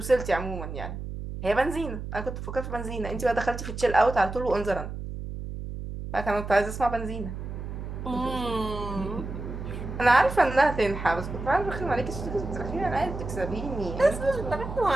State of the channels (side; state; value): right; noise; hum, 7 dB below the sound